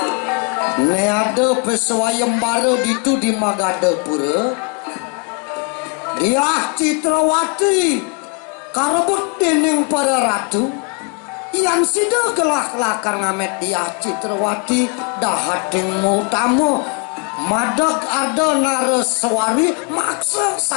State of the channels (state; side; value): quieter; right; 36.8 dB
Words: neade peswayembara ditu di Magadapura dia Citrawati karebut dening para ratu yang sida gelah lakar ngamet dia Citrawati dahating utama madag arda naraswari maksa